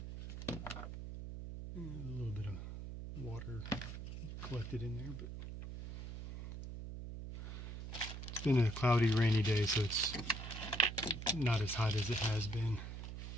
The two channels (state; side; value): noise; right; hum, 8 dB below the sound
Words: A little bit of water collected in there, but it's been a cloudy, rainy day, so it's not as hot as it has been.